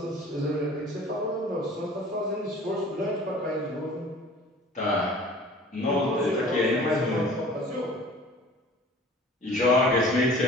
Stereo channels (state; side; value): normal; both; correlation 0.46